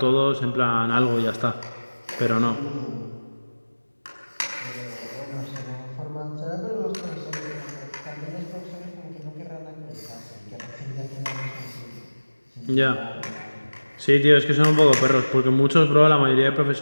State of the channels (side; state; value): both; inverted; correlation -1.00